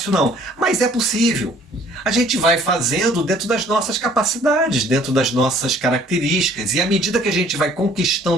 não, mas é possível. A gente vai fazendo dentro das nossas capacidades, dentro das nossas características, e à medida que a gente vai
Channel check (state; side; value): normal; both; correlation 0.57